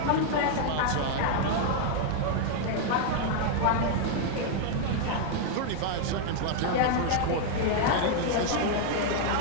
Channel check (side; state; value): both; different; correlation 0.00